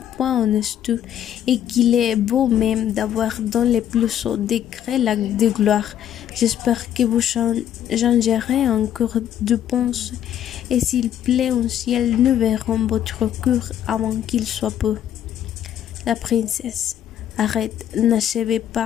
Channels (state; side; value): quieter; right; 10.4 dB